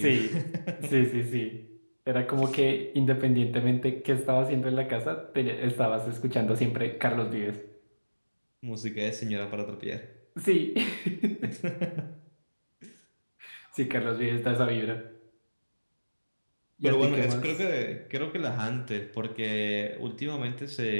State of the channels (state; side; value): inverted; both; correlation -1.00